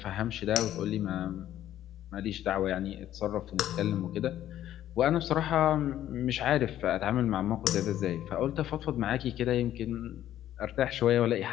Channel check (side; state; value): right; quieter; 12.2 dB